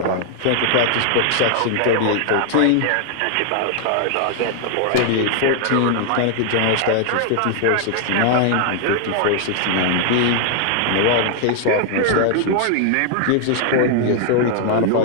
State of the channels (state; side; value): different; both; correlation 0.00